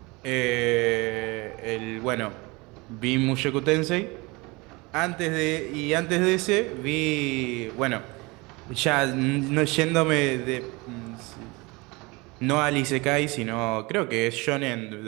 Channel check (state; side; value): quieter; left; 25.0 dB